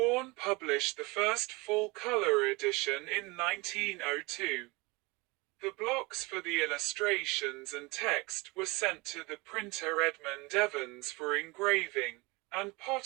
published the first full-color edition in 1902. The blocks for the illustrations and text were sent to the printer Edmund Evans for engraving, and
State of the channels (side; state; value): left; quieter; 25.1 dB